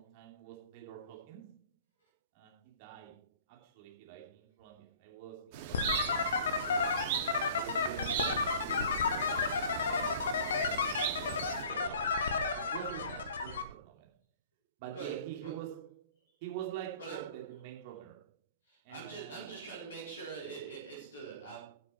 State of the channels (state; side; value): inverted; both; correlation -0.47